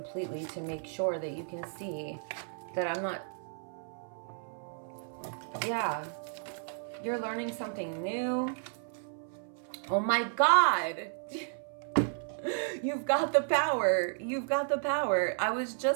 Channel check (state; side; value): silent; left; 56 dB below the other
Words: to make sure that you can see that I'm not, yeah, you're learning something new. Oh my God. You've got the power. You've got the power. I was